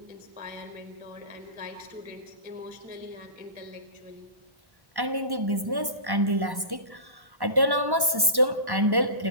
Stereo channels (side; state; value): left; late; 1.1 ms